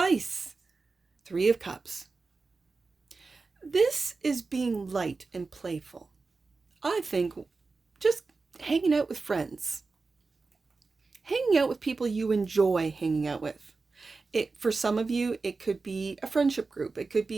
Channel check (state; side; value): quieter; left; 4.0 dB